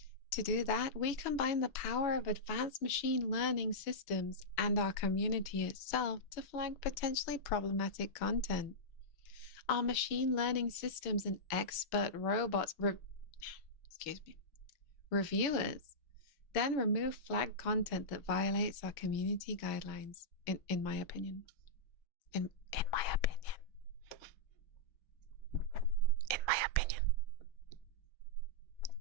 To do that, we combine the power of advanced machine learning systems and our community itself to flag potentially problematic content. Our machine learning systems and expert robots, reviewers, then remove flagged content that violates our community guidelines, in my opinion. In my opinion. In my opinion.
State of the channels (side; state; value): right; late; 6.2 ms